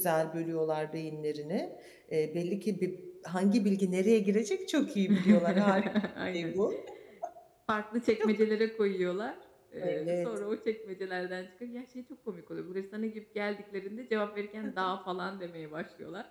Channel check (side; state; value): both; identical; correlation 1.00